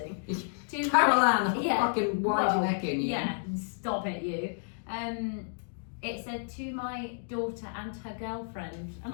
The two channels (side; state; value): right; silent; digital silence